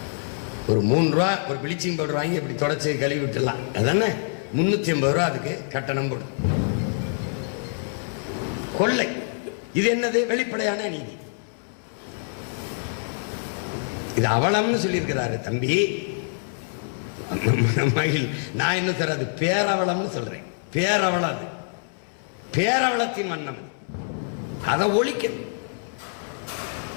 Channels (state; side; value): silent; right; 61 dB below the other